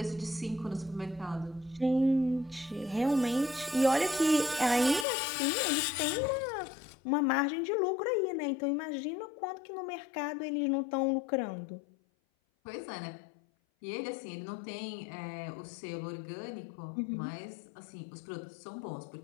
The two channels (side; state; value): right; drops out; at 5.1 s